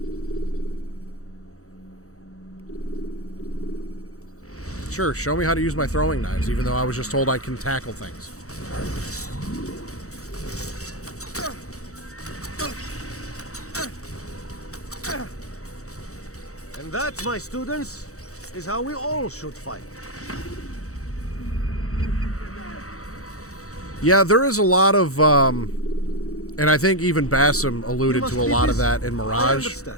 Sure, show me how to use my throwing knives, even though I was just told I can tackle things. And that, my students, is how we all should fight. Yeah, there is a lot of, and I think even Bassam alluded to a lot of that in Mirage.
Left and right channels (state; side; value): late; right; 0.65 ms